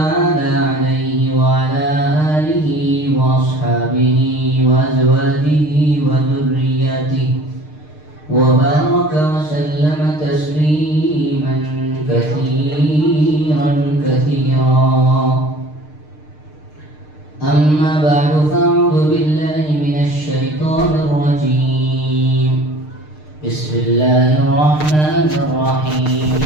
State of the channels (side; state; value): right; late; 6.6 ms